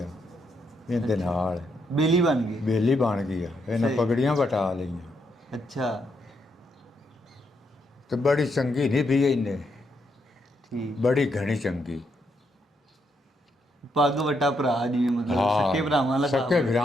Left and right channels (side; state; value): both; normal; correlation 0.78